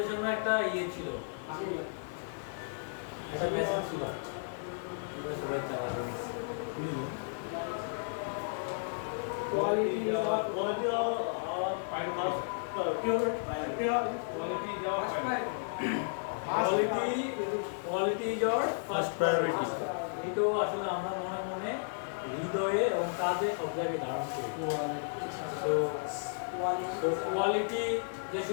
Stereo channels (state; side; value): silent; right; digital silence